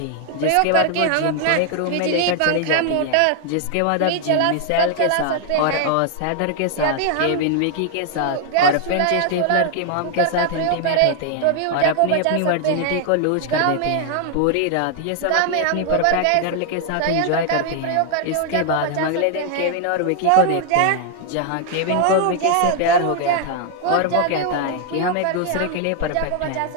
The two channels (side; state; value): both; different; correlation 0.00